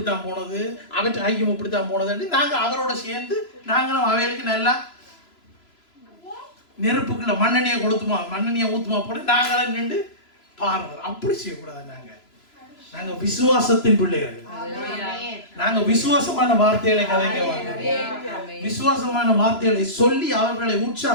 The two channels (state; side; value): late; right; 3.0 ms